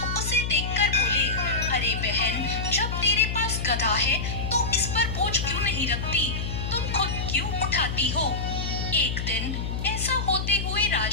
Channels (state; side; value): noise; left; hum, 3 dB below the sound